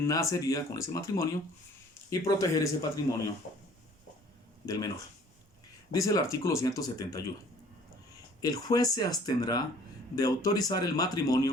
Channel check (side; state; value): both; normal; correlation 0.53